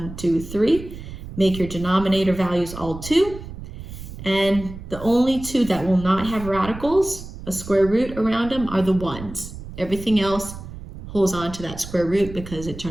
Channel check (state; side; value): noise; right; rumble, 12 dB below the sound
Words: 2, 3. Make your denominator values all 2. And the only 2 that will not have radicals, a square root around them, are the 1s. Everything else holds on to that square root because it